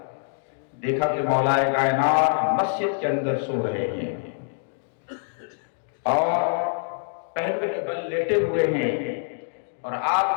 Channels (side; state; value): right; silent; digital silence